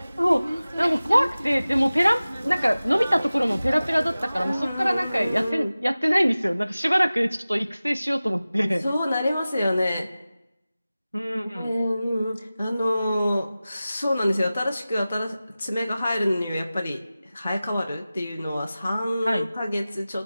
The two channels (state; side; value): inverted; both; correlation -0.97